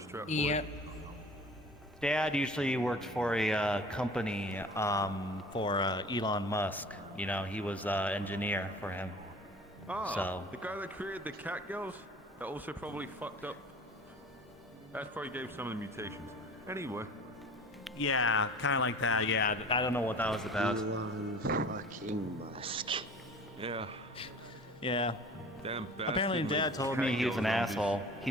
trap. Yep. Dad usually worked for a company for Elon Musk. You know, he was engineer for him. Ah, So the guy that created the cat girls, that also probably fucked up. That's probably gave some of the mutations. Anyway. yeah, kind of like that. Yeah, I don't know what that was about. Elon fucking Musk. Yeah. Yeah. Damn bastard. Apparently, made Dad told cat me he was girls an on asshole. He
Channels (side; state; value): both; normal; correlation 0.43